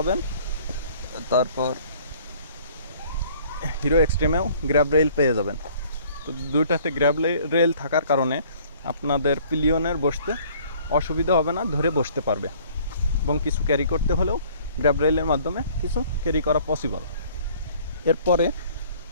তারপর হিরো এক্সট্রিমেও গ্র্যাব রেল পেয়ে যাবেন। তো দুইটাতে গ্র্যাব রেল থাকার কারণে আপনাদের পিলিয়নের বসতে অসুবিধা হবে না, ধরে বসতে পারবে, এবং কিছু ক্যারি করতে হলেও গ্র্যাব রেলের মাধ্যমে কিছু ক্যারি করা পসিবল। এরপরে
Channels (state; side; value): inverted; both; correlation -0.55